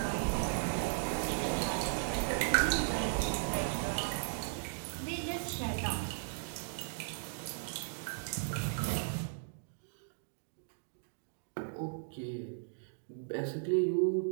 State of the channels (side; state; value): left; silent; digital silence